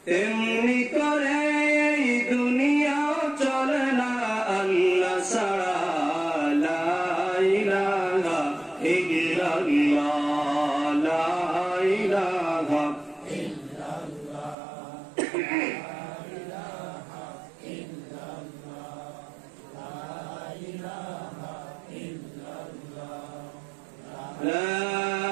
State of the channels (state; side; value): drops out; left; at 14.6 s